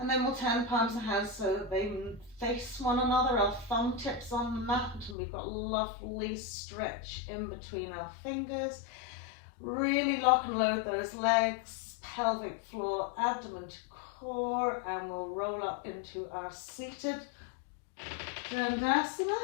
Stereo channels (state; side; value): drops out; right; at 5.2 s